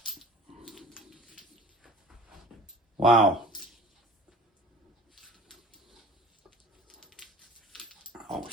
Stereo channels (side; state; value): both; normal; correlation 0.44